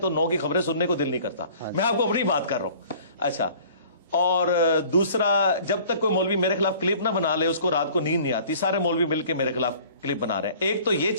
9 کی خبریں سننے کو دل نہیں کرتا۔ میں آپ کو اپنی بات کر رہا ہوں۔ اچھا، اور دوسرا، جب تک کوئی مولوی میرے خلاف کلپ نہ بنا لے اس کو رات کو نیند نہیں آتی، سارے مولوی مل کے میرے خلاف کلپ بنا رہے ہیں۔ ایک تو یہ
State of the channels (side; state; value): both; inverted; correlation -0.50